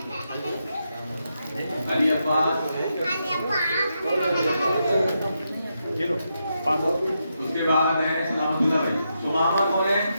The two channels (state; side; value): inverted; both; correlation -0.84